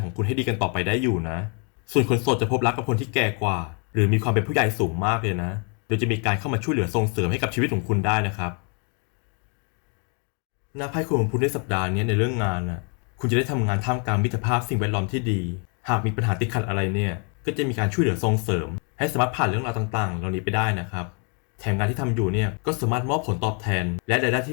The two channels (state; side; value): quieter; right; 38.2 dB